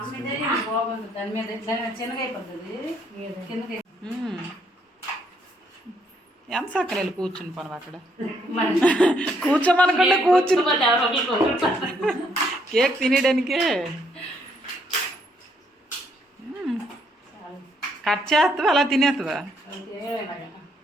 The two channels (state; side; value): normal; both; correlation 0.71